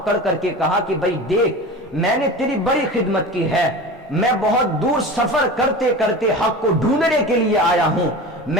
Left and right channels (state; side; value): normal; both; correlation 0.32